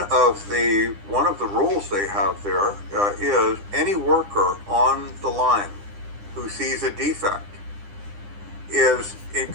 of the rules they have there is any worker on the line who sees a defect is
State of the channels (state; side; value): late; left; 9.9 ms